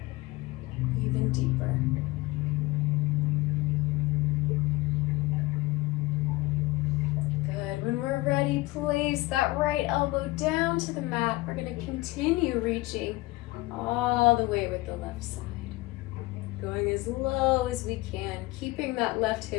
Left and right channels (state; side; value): quieter; right; 20.8 dB